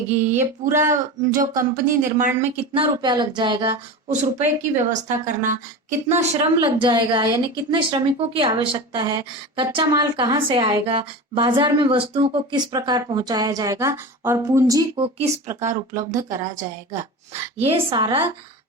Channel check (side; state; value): both; normal; correlation 0.28